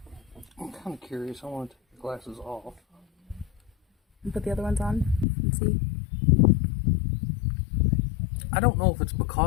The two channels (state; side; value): drops out; right; at 5.2 s